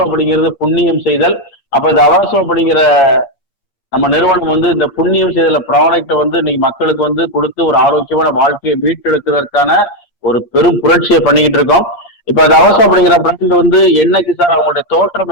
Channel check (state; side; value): late; right; 8.6 ms